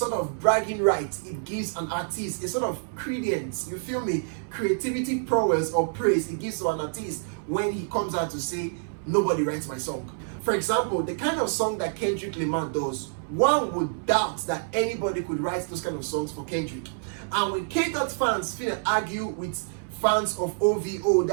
of bragging right it gives an artist, a sort of credence, you feel me? Creativity prowess or praise it gives to an artist when he comes out to say, nobody writes my song. For example, the kind of song that Kendrick Lamar does, one would doubt that anybody could write those kind of songs for Kendrick. And when K-Dot fans finna argue with fans of OVO,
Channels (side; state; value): left; silent; 60 dB below the other